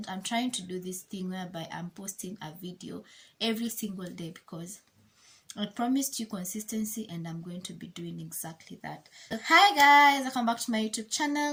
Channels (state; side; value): identical; both; correlation 1.00